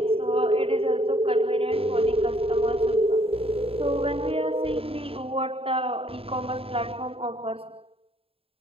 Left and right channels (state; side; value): late; left; 0.27 ms